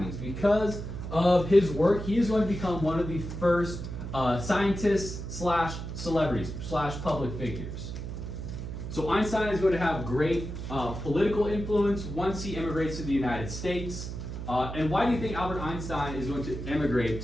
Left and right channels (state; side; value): noise; right; hum, 7 dB below the sound